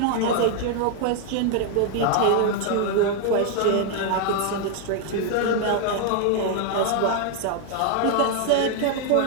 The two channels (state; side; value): different; both; correlation 0.00